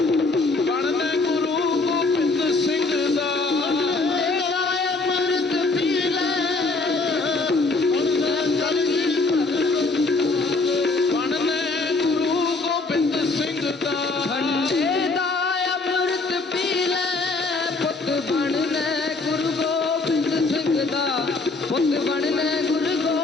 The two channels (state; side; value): quieter; right; 3.6 dB